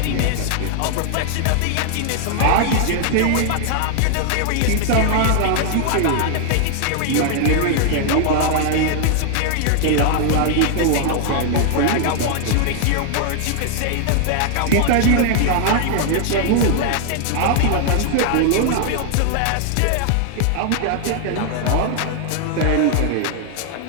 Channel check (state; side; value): different; both; correlation 0.00